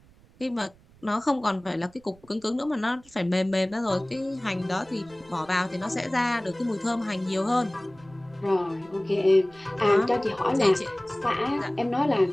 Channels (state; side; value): noise; right; rumble, 27 dB below the sound